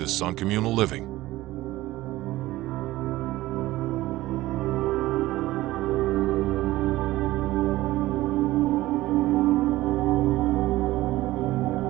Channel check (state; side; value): quieter; left; 17.2 dB